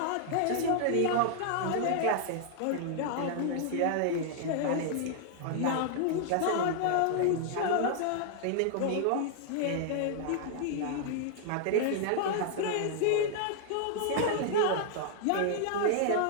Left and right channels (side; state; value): both; different; correlation -0.01